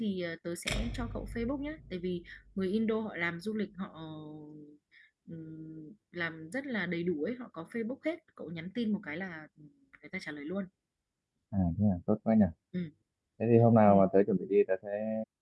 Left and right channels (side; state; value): both; identical; correlation 1.00